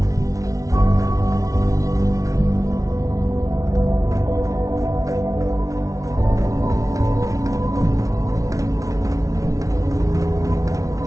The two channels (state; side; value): late; left; 0.17 ms